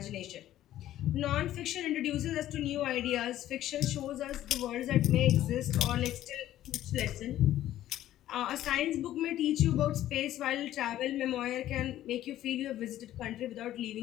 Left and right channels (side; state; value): right; quieter; 13.2 dB